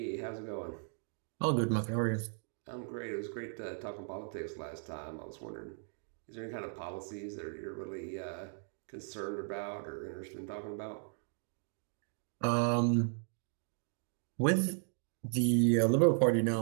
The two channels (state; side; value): silent; left; 54 dB below the other